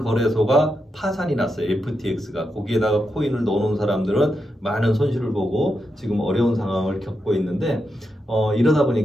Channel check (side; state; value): both; normal; correlation 0.85